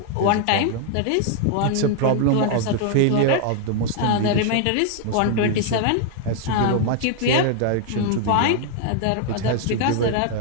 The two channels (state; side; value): different; both; correlation 0.00